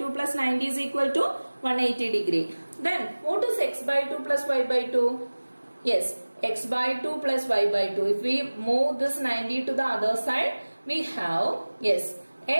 plus 90 is equal to 180 degree. Then what is x by 2 plus y by 2? Yes, x by 2 plus y by 2. If we move this 90 to the other side, we have, yes,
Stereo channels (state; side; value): inverted; both; correlation -1.00